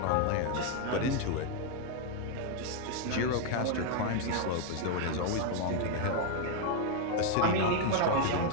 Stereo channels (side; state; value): both; different; correlation 0.00